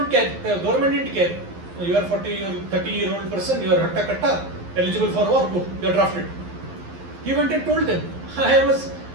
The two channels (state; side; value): late; left; 11 ms